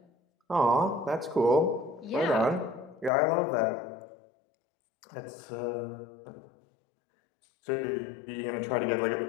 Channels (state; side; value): drops out; right; at 3.1 s